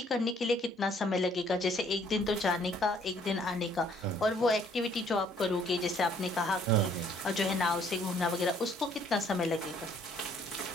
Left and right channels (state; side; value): normal; both; correlation 0.62